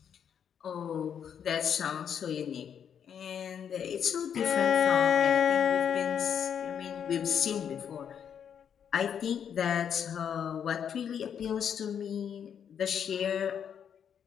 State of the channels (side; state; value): right; quieter; 8.2 dB